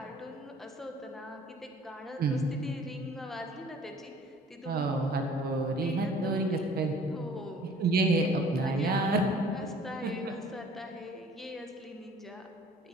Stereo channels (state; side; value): normal; both; correlation 0.52